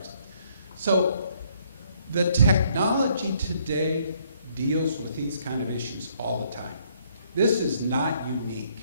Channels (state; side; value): inverted; both; correlation -0.67